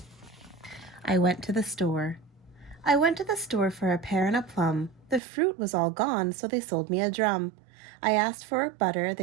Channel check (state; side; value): drops out; left; at 5.2 s